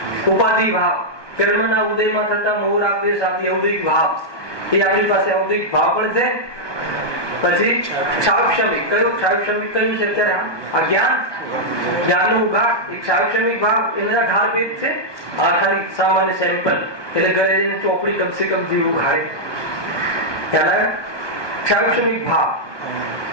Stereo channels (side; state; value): right; late; 1.2 ms